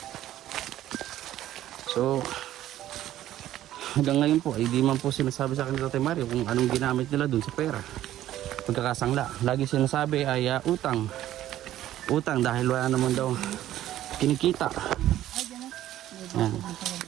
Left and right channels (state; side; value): quieter; left; 13.2 dB